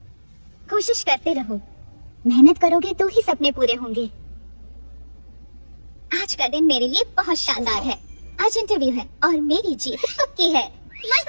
कोशिश करते रहो, मेहनत करोगे तो ही सपने पूरे होंगे। आज का दिन मेरे लिए बहुत शानदार है। आज इंटरव्यू है और मेरी जीत पक्की है।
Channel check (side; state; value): both; inverted; correlation -1.00